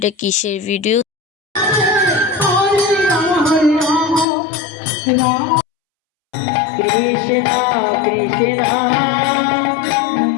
কিসের ভিডিও। কৃষ্ণা কৃষ্ণা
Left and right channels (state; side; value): drops out; right; at 4.2 s